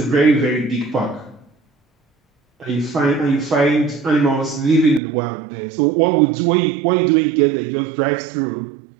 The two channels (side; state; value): left; drops out; at 5.0 s